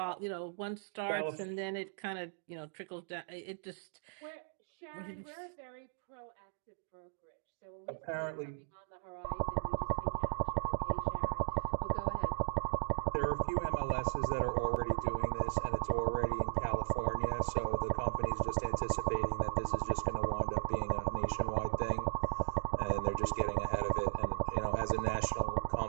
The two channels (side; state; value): left; silent; digital silence